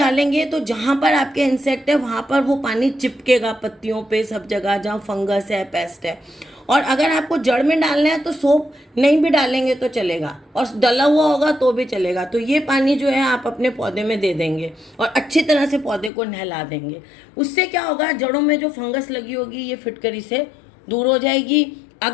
तो जहाँ पर आपके इंसेक्ट है वहाँ पर वो पानी चिपकेगा, पत्तियों पे, सब जगह जहाँ फंगस है, पेस्ट है। और अगर आपको जड़ में डालना है तो सोप नहीं भी डालेंगे तो चलेगा, और डला हुआ होगा तो भी चलेगा। तो ये पानी जो है आप अपने पौधे में दे देंगे और अच्छी तरह से पौधे को नहला देंगे। उससे क्या होगा, जड़ों में जो फंगस लगी होगी ये फिटकरी से दूर हो जाएगी।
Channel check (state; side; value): drops out; right; at 16.1 s